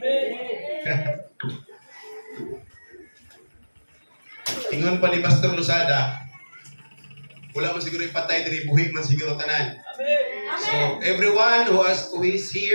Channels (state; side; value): inverted; both; correlation -1.00